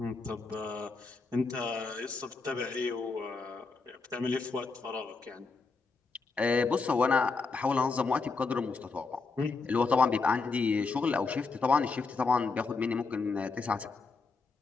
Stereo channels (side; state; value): right; quieter; 4.3 dB